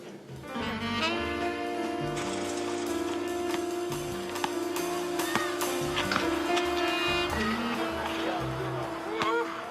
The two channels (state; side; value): identical; both; correlation 1.00